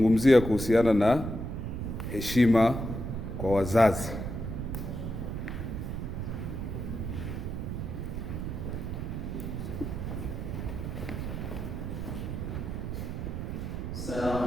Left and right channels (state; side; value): noise; right; rumble, 4 dB below the sound